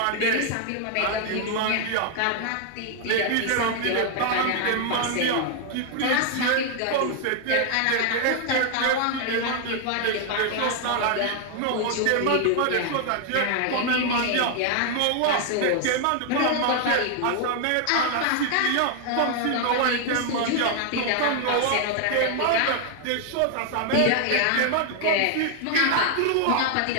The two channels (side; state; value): both; different; correlation 0.00